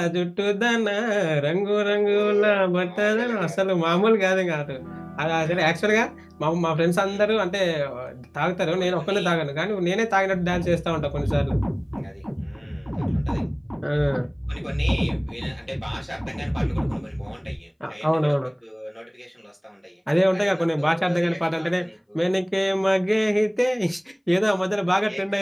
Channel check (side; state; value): both; identical; correlation 1.00